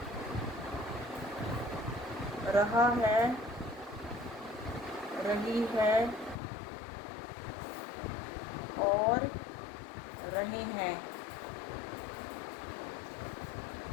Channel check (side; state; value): right; drops out; at 6.4 s